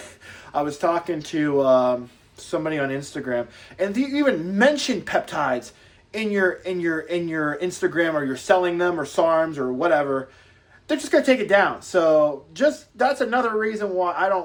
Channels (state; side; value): identical; both; correlation 1.00